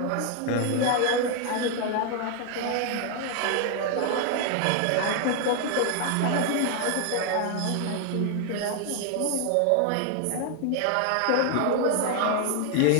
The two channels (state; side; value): different; both; correlation 0.00